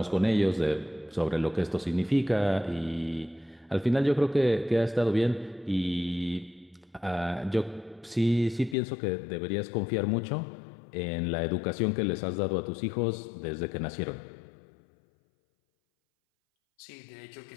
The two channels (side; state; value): right; drops out; at 8.8 s